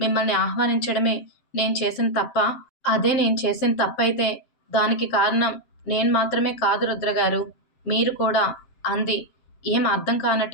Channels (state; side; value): late; right; 7.6 ms